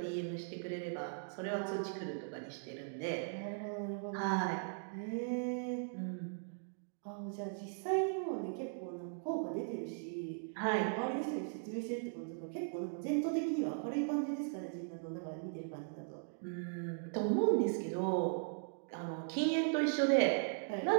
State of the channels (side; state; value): left; silent; digital silence